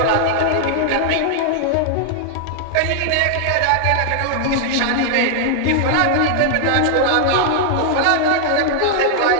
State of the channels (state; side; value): different; both; correlation -0.01